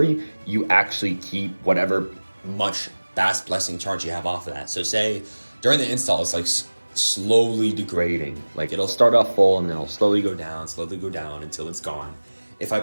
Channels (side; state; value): both; inverted; correlation -1.00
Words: you actually keep whatever much Bass Blessing charge you have off of that. So say during the install, it's like slowly degrading. Like it'll start off full and then it'll slowly go down until it's gone. If I